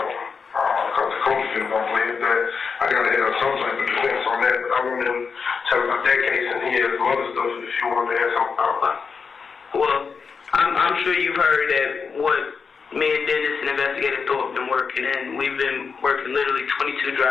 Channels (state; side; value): quieter; right; 5.5 dB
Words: one. Because the coach didn't want to believe that. I got to have some type of defense on that. But I want him to tell about that case, and he has some other stuff if you want to ask something about that. Well, I'm sure you've heard that what me and Dennis and investigator Thorpe been working, and we've been working literally 22